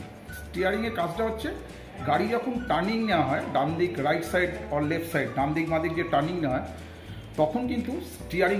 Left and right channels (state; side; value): identical; both; correlation 1.00